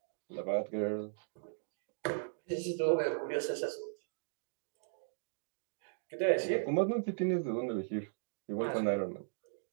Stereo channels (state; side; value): silent; left; digital silence